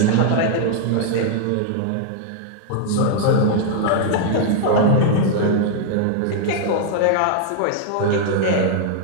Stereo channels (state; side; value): different; both; correlation -0.01